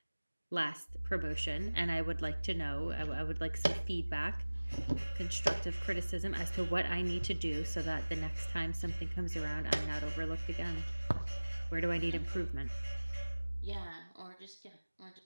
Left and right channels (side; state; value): both; inverted; correlation -1.00